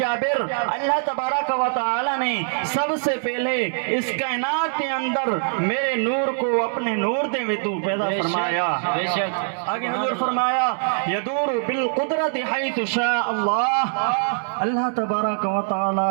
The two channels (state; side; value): silent; left; 63 dB below the other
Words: اللہ تبارک و تعالی نے سب سے پہلے اس کائنات کے اندر میرے نور کو اپنے نور دے میں تو پیدا فرمایا. بے شک. آگے حضور فرمایا یدور بالقدرت حیث شاء اللہ. اللہ تبارک و